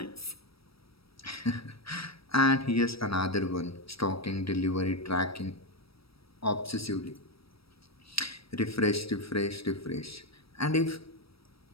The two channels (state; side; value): late; right; 0.76 ms